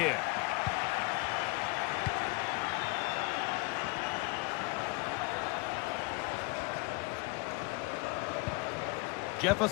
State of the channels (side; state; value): right; quieter; 25.8 dB